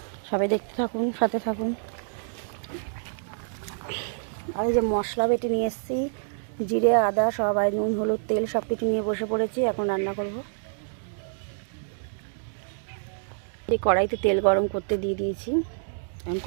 সবাই দেখতে থাকুন, সাথে থাকুন। আর এই যে মশলা বেটে নিয়ে এসেছি, জিরে আদা সবাই, নুন হলুদ তেল সব কিছু নিয়ে বসে পড়েছি, এখন রান্না করব। এই কড়াইতে তেল গরম করতে দিয়ে দিয়েছি। এখন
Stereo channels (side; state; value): left; silent; digital silence